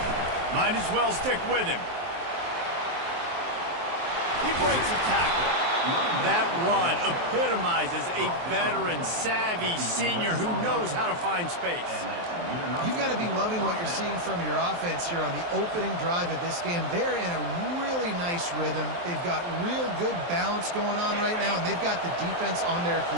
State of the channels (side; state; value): left; late; 23 ms